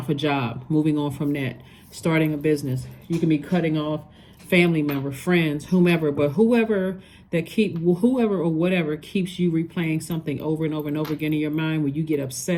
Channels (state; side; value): identical; both; correlation 1.00